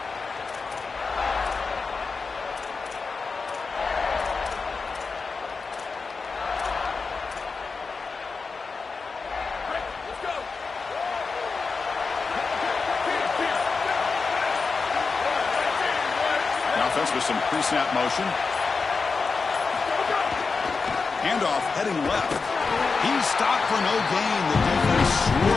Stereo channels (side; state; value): right; quieter; 4.6 dB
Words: Offense with some pre-snap motion. Handoff heading left. He's stopped for no gain. The defense